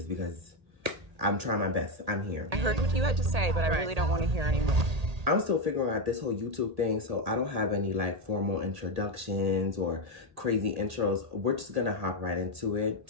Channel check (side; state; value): left; late; 1.8 ms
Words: because I'm trying my best. I'm here. I heard what you had to say, but I really don't want to hear anymore. I'm still figuring out this whole YouTube thing, so I don't have any formal introductions or crazy intros. We're just gonna hop right into it.